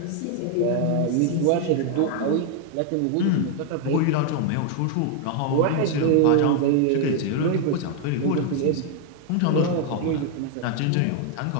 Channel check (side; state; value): both; different; correlation 0.00